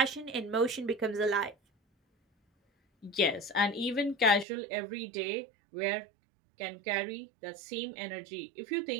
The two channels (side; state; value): left; drops out; at 4.5 s